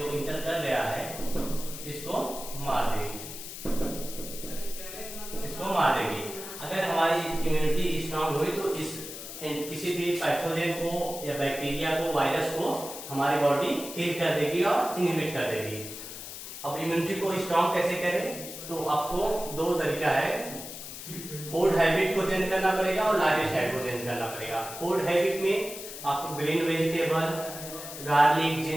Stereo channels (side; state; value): left; noise; hiss, 10 dB below the sound